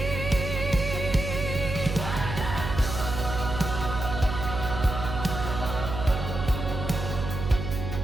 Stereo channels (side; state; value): right; noise; hum, 5 dB below the sound